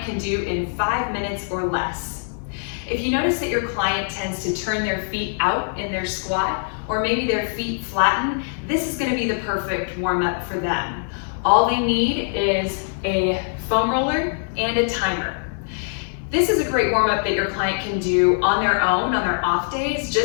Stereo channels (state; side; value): silent; right; digital silence